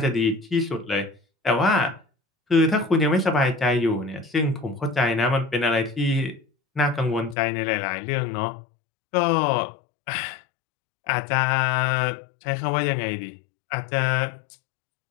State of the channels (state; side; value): drops out; right; at 7.4 s